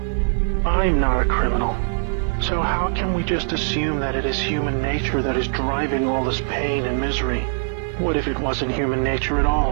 I'm not a criminal. So how can we just assume that it is human nature that is driving all this pain and misery? What if it wasn't human nature at all,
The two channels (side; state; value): left; silent; 56 dB below the other